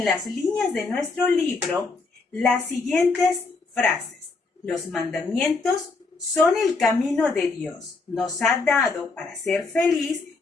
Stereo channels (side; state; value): right; quieter; 4.0 dB